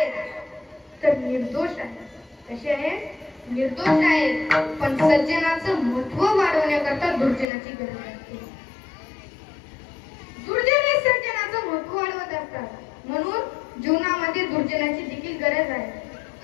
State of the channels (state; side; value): drops out; right; at 7.5 s